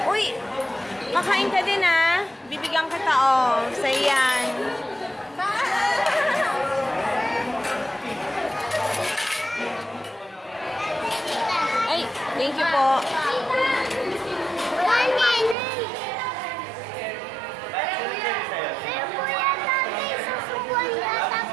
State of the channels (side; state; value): left; drops out; at 15.6 s